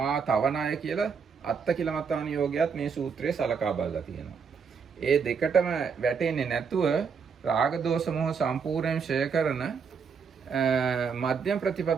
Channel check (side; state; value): left; quieter; 6.0 dB